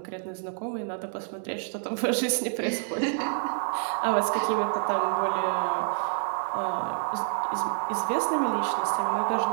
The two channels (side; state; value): left; silent; 58 dB below the other